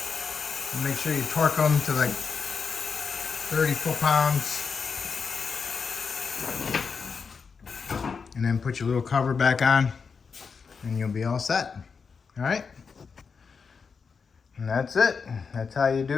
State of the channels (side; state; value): right; quieter; 5.5 dB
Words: and make sure you torque them to like 30 foot-pounds, and then put your little cover back on, and you'll be all set. All right? And that's it. That's how you